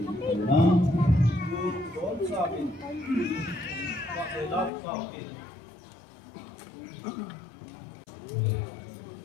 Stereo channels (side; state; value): right; drops out; at 4.7 s